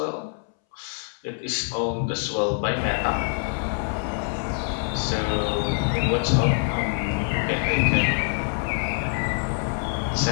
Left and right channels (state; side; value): silent; right; 62 dB below the other